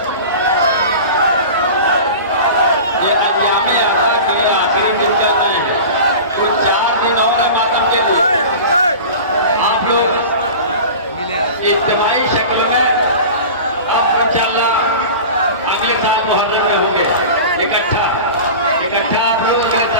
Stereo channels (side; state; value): both; inverted; correlation -0.34